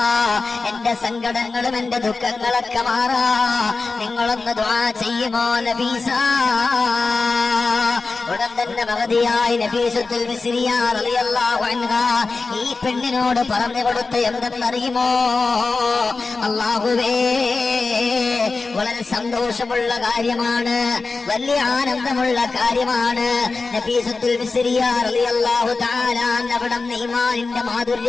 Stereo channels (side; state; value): right; quieter; 4.0 dB